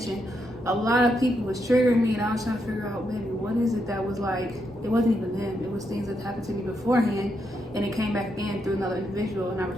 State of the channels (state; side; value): normal; both; correlation 0.81